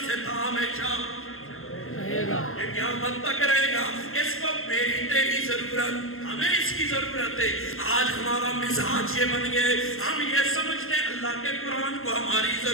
سے تھا, ہمیشہ یہ قیامت تک رہے گا. اس کو میری تیری ضرورت, ہمیں اس کی ضرورت ہے. آج ہمارا مزاج یہ بن گئے, ہم یہ سمجھتے ہیں اللہ کے قرآن کو ہماری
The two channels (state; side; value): late; right; 0.61 ms